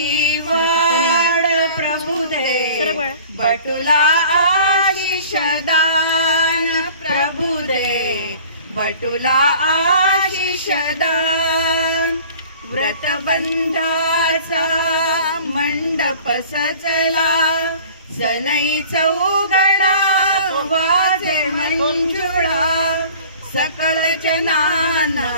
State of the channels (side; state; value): both; inverted; correlation -0.46